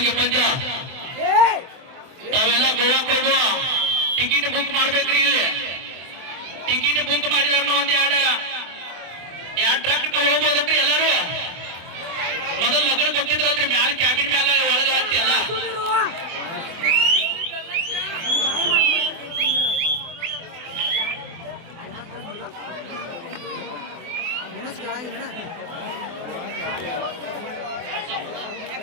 ಪಂದ್ಯ. ತಾವೆಲ್ಲ ಗೋವಾಕ್ ಹೋಗುವ ಟಿಕೆಟ್ ಬುಕ್ ಮಾಡ್ಬೇಕ್ರಿ. ಇಲ್ಲಿ ಟಿಕೆಟ್ ಬುಕ್ ಮಾಡಿದವ್ರನ್ನ ಒಂದ್ ಎರಡು ಟ್ರಕ್ ಹೋಗ್ಬೋದನ್ರಿ ಎಲ್ಲಾರು. ಮೊದಲು ಲಗ್ನ ಕೊಟ್ಟಿದ್ರಲ್ರಿ ಮ್ಯಾಲ ಕ್ಯಾಬಿನ್ ಮ್ಯಾಲ ಒಳಗ ಹತ್ತಿ ಅಲ್ಲ.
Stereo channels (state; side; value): late; left; 24 ms